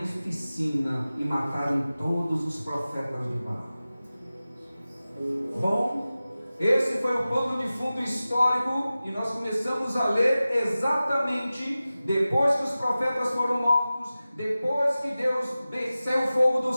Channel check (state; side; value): inverted; both; correlation -0.96